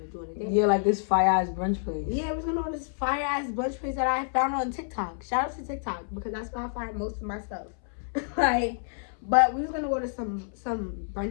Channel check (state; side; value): silent; right; 59 dB below the other